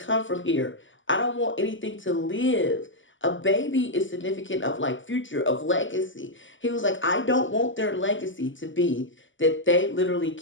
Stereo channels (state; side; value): late; right; 0.55 ms